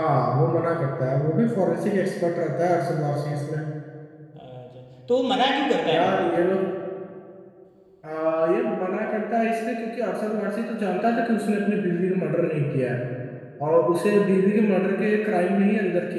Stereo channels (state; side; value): identical; both; correlation 1.00